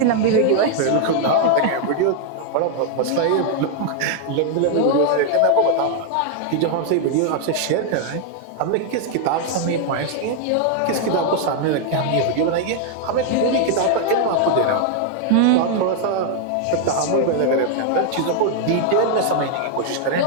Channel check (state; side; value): different; both; correlation 0.00